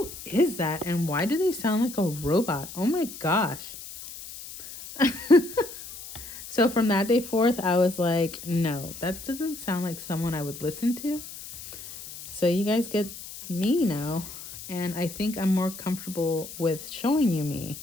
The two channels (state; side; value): noise; left; hiss, 13 dB below the sound